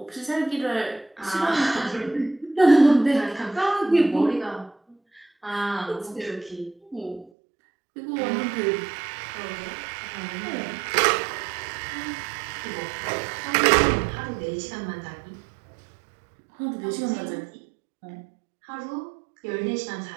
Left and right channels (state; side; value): drops out; left; at 7.3 s